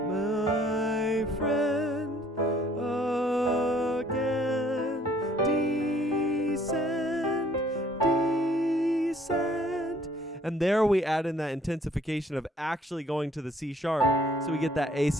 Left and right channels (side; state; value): both; normal; correlation 0.60